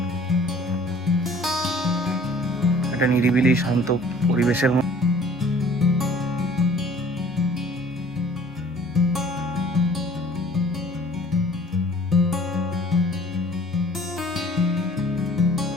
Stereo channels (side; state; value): right; noise; hum, 28 dB below the sound